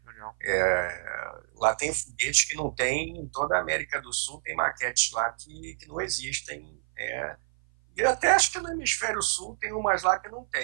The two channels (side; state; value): left; silent; 56 dB below the other